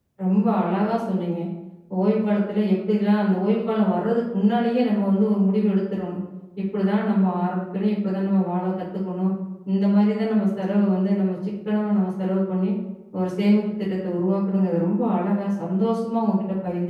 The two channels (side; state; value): both; identical; correlation 1.00